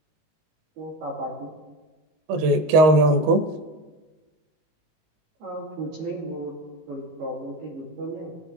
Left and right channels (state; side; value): late; left; 19 ms